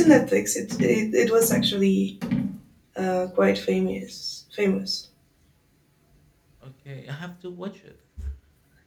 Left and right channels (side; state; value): both; identical; correlation 1.00